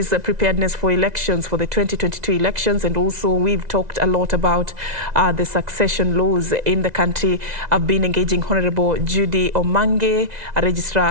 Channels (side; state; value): left; late; 2.0 ms